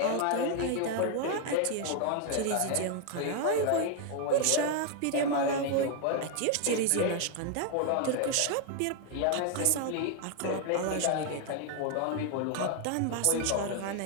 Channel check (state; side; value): different; both; correlation 0.00